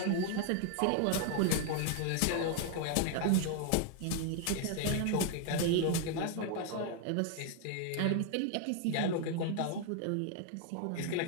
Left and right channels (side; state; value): both; different; correlation 0.00